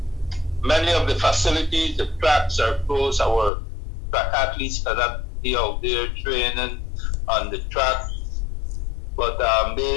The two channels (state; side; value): drops out; right; at 3.5 s